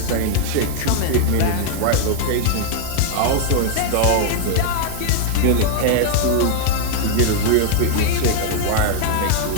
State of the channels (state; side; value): different; both; correlation 0.00